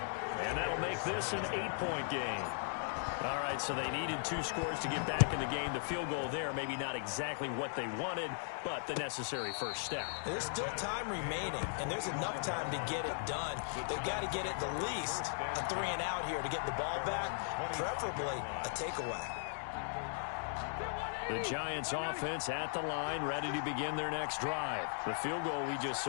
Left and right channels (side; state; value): right; silent; digital silence